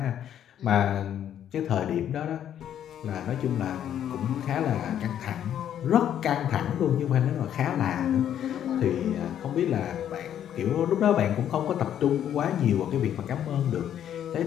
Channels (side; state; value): right; quieter; 10.2 dB